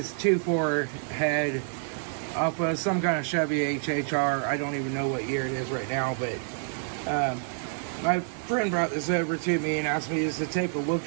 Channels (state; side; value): silent; left; digital silence